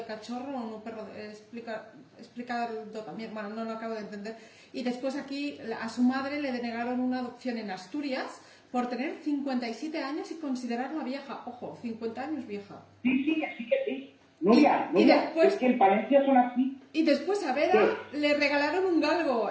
cachorro o un perro explicado también, bueno, no lo acabo de entender. Y después aquí a su madre le denegaron una adopción en Asturias por tener 57 años y considerarla vieja. Ojo, 50 años vieja. Sí, así que sí. Nuria, después, es que en Palencia son así. Y después a Vera le regalaron un galgo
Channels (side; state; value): both; identical; correlation 1.00